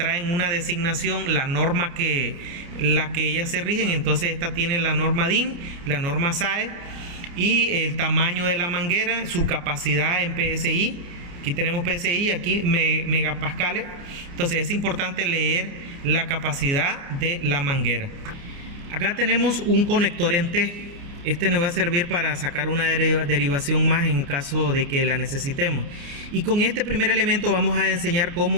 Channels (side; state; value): left; late; 29 ms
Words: una designación, la norma la que ellas se rigen. Entonces esta tiene la norma DIN, la norma SAE y el tamaño de la manguera, su capacidad en PSI. Aquí tenemos PSI, aquí megapascales. Entonces es importante leer la capacidad de la manguera. Acá tenemos un conector en T. Este nos va a servir para sacar una derivación más en caso de que la necesitemos. Y con este primer elemento vamos a enseñar